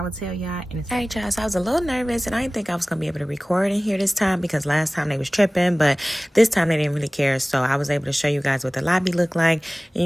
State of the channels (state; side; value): normal; both; correlation 0.98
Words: will tell y'all in a second. All right, y'all, so I was a little nervous, and I didn't think I was going to be able to record in here this time because last time they was tripping, but this time they didn't really care, so I was able to show you guys what the lobby looked like, and